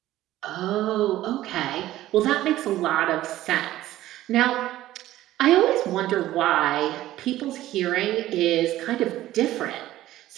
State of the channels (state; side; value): quieter; left; 14.7 dB